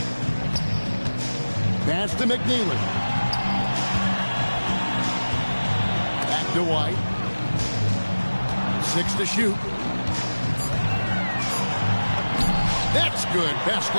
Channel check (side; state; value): both; inverted; correlation -1.00